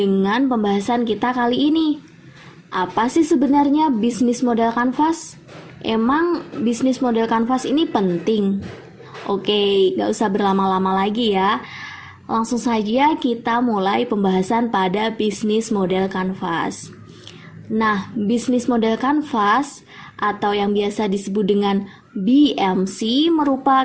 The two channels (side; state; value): both; identical; correlation 1.00